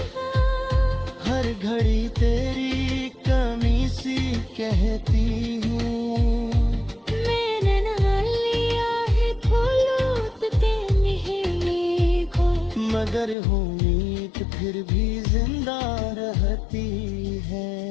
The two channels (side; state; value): right; drops out; at 13.4 s